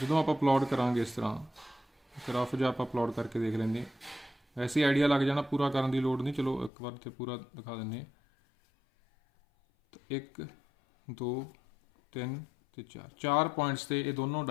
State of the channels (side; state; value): right; drops out; at 6.7 s